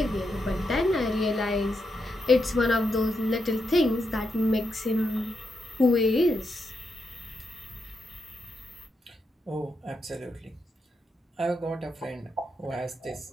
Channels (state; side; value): normal; both; correlation 0.83